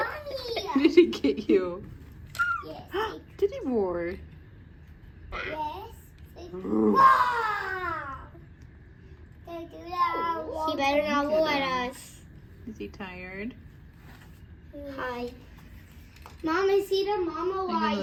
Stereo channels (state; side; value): identical; both; correlation 1.00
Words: Did he get you? Yes. Did he roar? Yes. Wow. He better not look at us. Is he tired? Hi. Mom, I see the mama